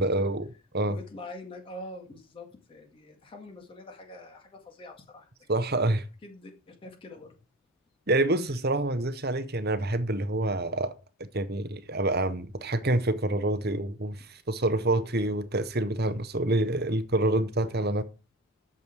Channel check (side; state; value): both; normal; correlation 0.32